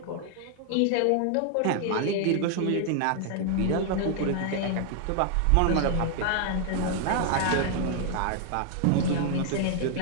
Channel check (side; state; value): both; different; correlation 0.00